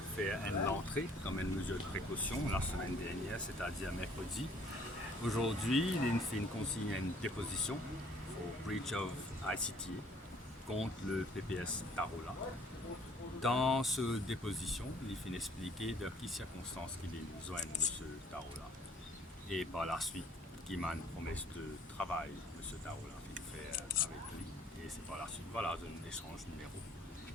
Fait l'entrée comme une mesure de précaution la semaine dernière, c'est-à-dire mercredi. Aujourd'hui, il fait une consigne à une déposition pour breach of ICTA contre le PPS Tarola. Dans cette déposition, il fait expliquer de quelles circonstances qu'il est besoin de M. Tarola. Et par la suite, qu'il m'a une promesse de travail, M. Tarola, qu'il fait avec lui. Et c'est par la suite, voilà, un échange numéro.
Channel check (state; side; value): normal; both; correlation 0.58